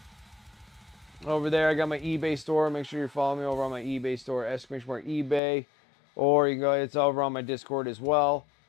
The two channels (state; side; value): drops out; right; at 5.4 s